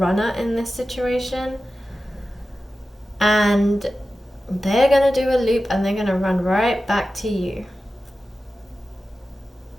in this situation, and they're going to do a loop and they're going to run right back to you.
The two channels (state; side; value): normal; both; correlation 0.94